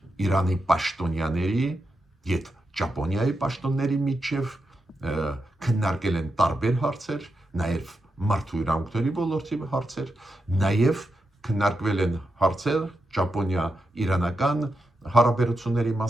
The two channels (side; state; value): both; normal; correlation 0.86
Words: Իրանի պաշտոնյաների եւ Ճապոնիայի պաշտոնների միջև, քննարկել են տարբեր հարցեր, նաև մարդու իրավունքների ոլորտի հարցեր, նաև քննարկվել են հարցեր Ճապոնիա-իրանական հարաբերությունների